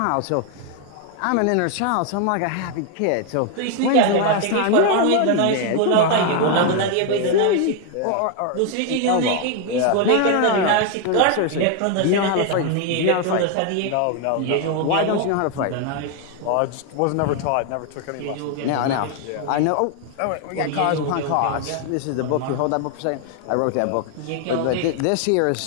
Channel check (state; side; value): different; both; correlation 0.01